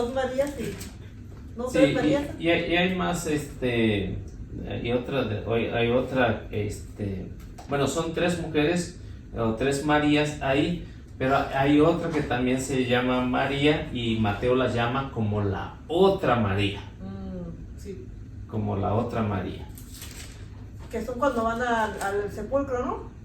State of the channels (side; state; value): both; identical; correlation 1.00